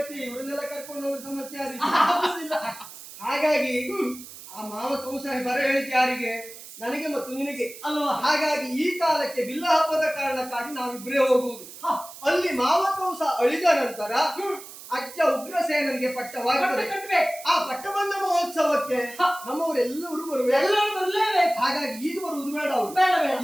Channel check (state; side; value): noise; right; hiss, 15 dB below the sound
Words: ಇವ್ರನ್ನೆಲ್ಲ ಕರ್ಕೊಂಡು ಹೋಗೋ ಸಮಸ್ಯೆ ಆಗುದಿಲ್ಲ. ಹಾಗಾಗಿ ಆ ಮಾವ ಕೌಸಾಯಿ ಬರ ಹೇಳಿದ್ ಯಾರಿಗೆ? ನನಗೆ ಮತ್ತು ನಿನಗೆ ಅಲ್ವಾ? ಹಾಗಾಗಿ ಈ ಕಾಲಕ್ಕೆ ಬಿಲ್ಲ ಹಬ್ಬದ ಕಾರಣಕ್ಕಾಗಿ ನಾವಿಬ್ಬರೇ ಹೋಗುವುದು. ಅಲ್ಲಿ ಮಾವ ಕೌಸ ಅಳಿದ ನಂತರ ಅಜ್ಜ ಉಗ್ರಸೇನನಿಗೆ ಪಟ್ಟವಾಗುತ್ತದೆ. ಆ ಪಟ್ಟಬಂಧ ಮಹೋತ್ಸವಕ್ಕೆ ನಮ್ಮವರೆಲ್ಲರೂ ಬರ್ಲೇಬೇಕು. ಹಾಗಾಗಿ ಈಗ ಬರುವುದು ಬೇಡ, ಅವರು